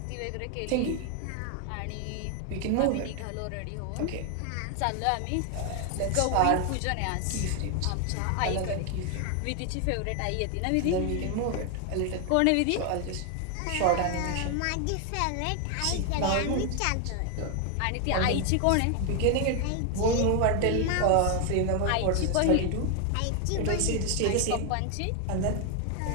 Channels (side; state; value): both; different; correlation 0.01